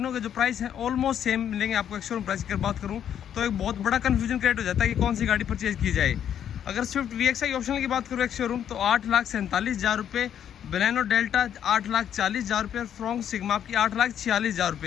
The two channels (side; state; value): right; quieter; 9.5 dB